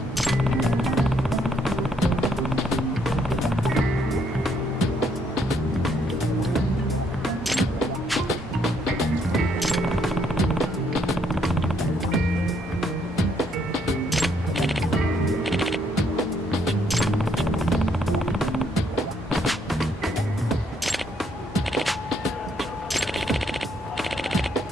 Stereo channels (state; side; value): normal; both; correlation 0.71